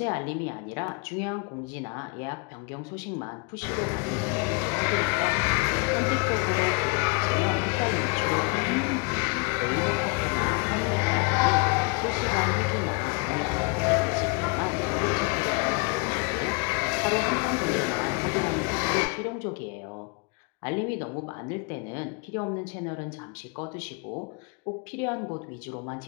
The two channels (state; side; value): quieter; right; 32.3 dB